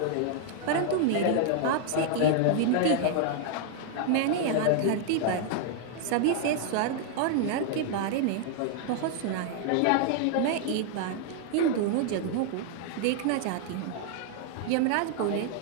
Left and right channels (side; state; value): both; different; correlation 0.00